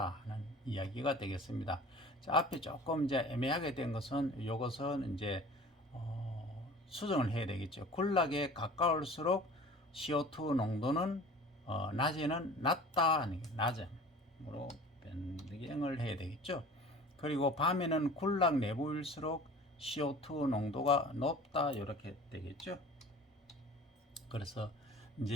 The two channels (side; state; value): both; normal; correlation 0.43